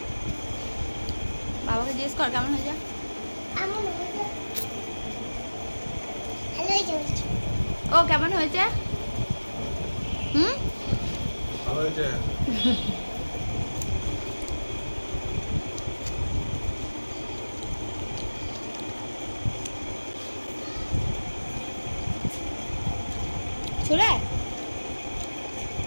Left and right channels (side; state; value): both; inverted; correlation -1.00